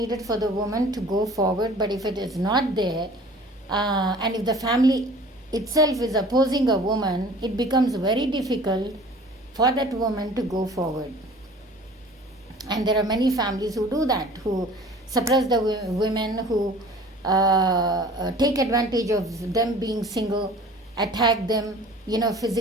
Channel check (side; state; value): both; normal; correlation 0.46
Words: for the woman to go forward, but if it is not there, and if the family itself is opposing a woman, it becomes very difficult for that woman to go forward. And there are many families who do that, who suppress the women, who take advantage of them being single, attack them,